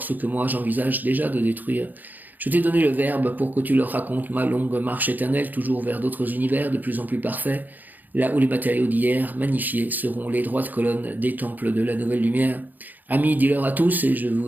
ce que moi j'envisage déjà de détruire. Je t'ai donné le verbe pour que tu leur racontes ma longue marche éternelle, toujours vers d'autres univers de plus en plus parfaits, là où les matériaux d'hier, magnifiés, seront les droites colonnes des temples de la nouvelle lumière. Amis, dis-leur à tous, et je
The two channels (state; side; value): late; left; 0.084 ms